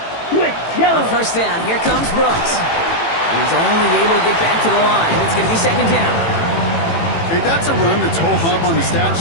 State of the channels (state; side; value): late; right; 18 ms